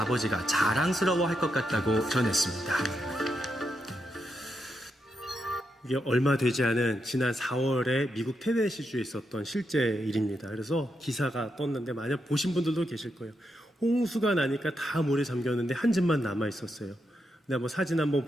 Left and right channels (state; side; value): normal; both; correlation 0.83